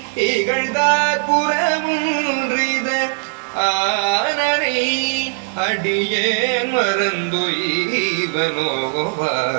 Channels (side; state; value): left; silent; digital silence